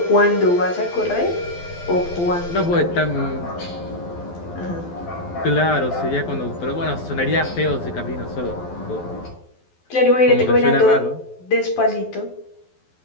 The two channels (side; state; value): right; late; 12 ms